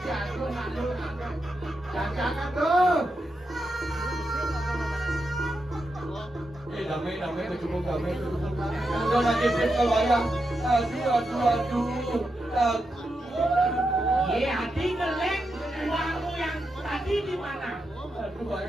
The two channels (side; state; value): both; normal; correlation 0.86